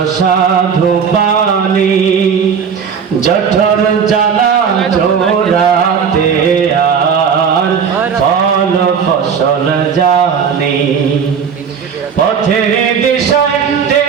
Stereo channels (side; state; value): left; quieter; 6.8 dB